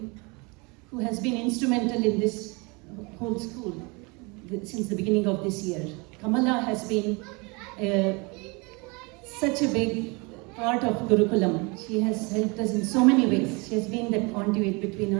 who has been instrumental in this whole school since the beginning of this year. Kamala has been such a big part of Gurukulam. She has helped us in so many ways. She has been the conduit between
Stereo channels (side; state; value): left; quieter; 28.6 dB